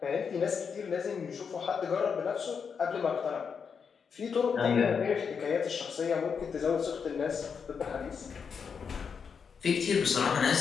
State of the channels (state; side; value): quieter; right; 6.3 dB